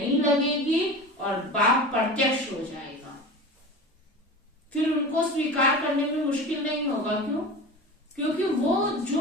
लगेगी और बाप प्रत्यक्ष हो जाएगा। फिर उनको स्वीकार करने में मुश्किल नहीं होगा। क्यों? क्योंकि वो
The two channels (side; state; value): both; normal; correlation 0.32